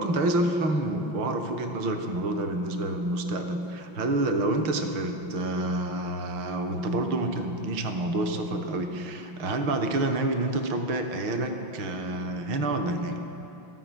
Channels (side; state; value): left; late; 5.9 ms